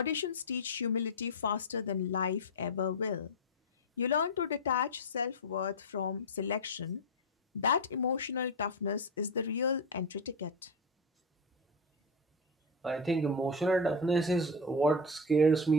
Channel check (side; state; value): both; normal; correlation 0.13